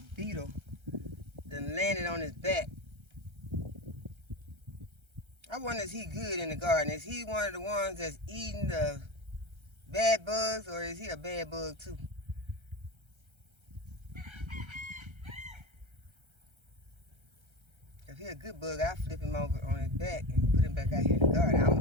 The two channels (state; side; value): late; left; 1.3 ms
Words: beetle that landed on his back. I wonder, is he good in the garden? Is he one of the ones that's eating the bad bugs, or is he a bad bug too? If he's a good bug, I'll flip him over on his back and put him back out here in the garden. I